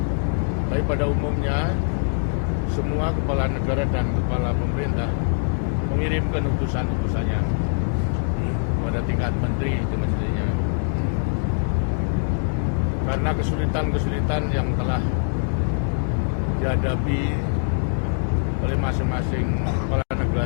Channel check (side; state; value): right; silent; digital silence